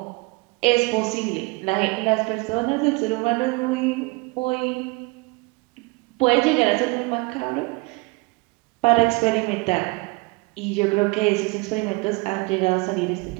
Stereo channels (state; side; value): quieter; left; 26.2 dB